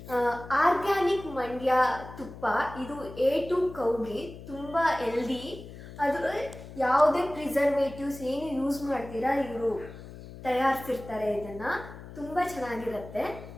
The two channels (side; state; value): left; noise; hum, 14 dB below the sound